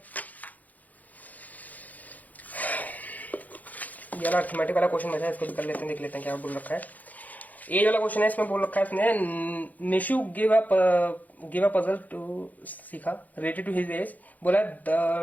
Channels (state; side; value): late; right; 0.079 ms